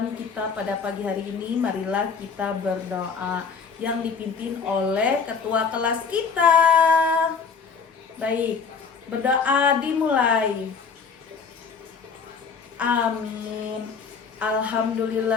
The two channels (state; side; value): quieter; right; 5.6 dB